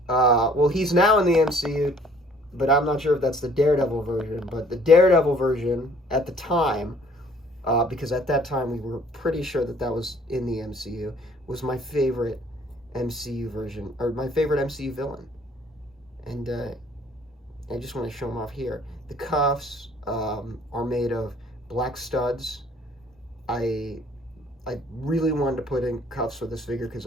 Well, he's now in the MCU, but I'm not sure if that's the Daredevil version. But the Daredevil version at the time, because at that time we were pretty sure that that was in the MCU, was my favorite MCU version, or my favorite MCU villain. And I just want to show them off here. The cuffs are made of black studs. I really wanted to put in cuffs for this figure because,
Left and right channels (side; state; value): both; normal; correlation 0.57